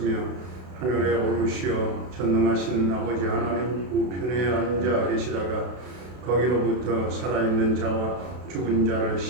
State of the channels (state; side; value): late; left; 32 ms